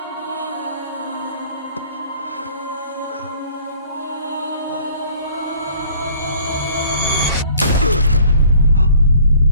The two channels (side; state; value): both; inverted; correlation -0.53